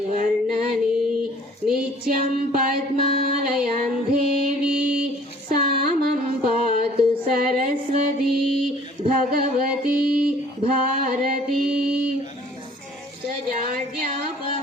వర్ణని నిత్యం పద్మాలయం దేవి సామం పాతు సరస్వతి భగవతి భారతి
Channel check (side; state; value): both; normal; correlation 0.53